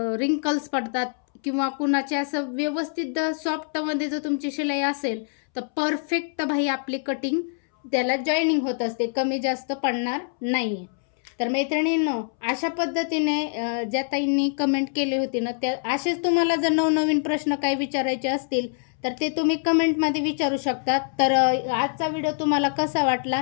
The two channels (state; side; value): silent; right; 62 dB below the other